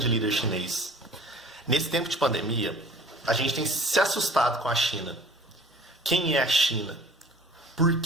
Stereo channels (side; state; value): both; normal; correlation 0.48